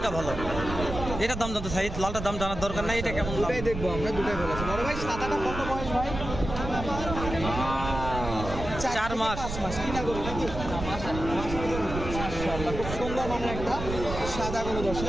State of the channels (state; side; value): noise; right; rumble, 7 dB below the sound